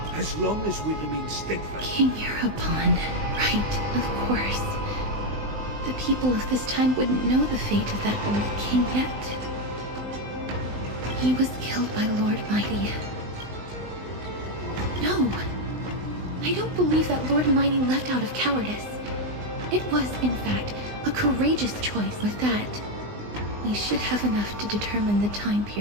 As long as we remain steadfast... King Europon. Right, of course. The people of this time wouldn't know the fate of that old king yet. He was killed by Lord Mighty. No, I don't believe that Lord Mighty left out of cowardice. It was, in fact, a courageous choice. With that, we should have enough to determine the time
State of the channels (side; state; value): left; late; 19 ms